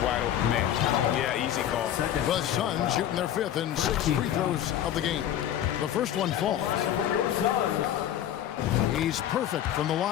wide open man. Yeah, easy call. The Suns shooting their 5th and 6th free throws of the game. The first one falls. He's perfect from the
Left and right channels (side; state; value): right; quieter; 11.0 dB